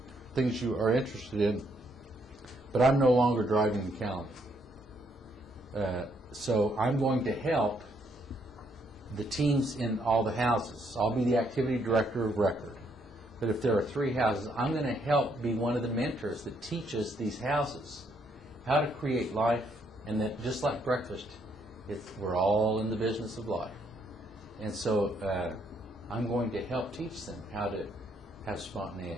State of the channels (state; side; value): normal; both; correlation 0.72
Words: things you are interested in, but I'm no longer driving the calendar. So I'm going to help the teams in all the houses. I'll be the activity director of record. But if there are 3 houses, I'm going to help be one of the mentors that teaches these houses how to create life, and that just like breakfast, we're all in the business of life. And so I'm going to help teach them how to have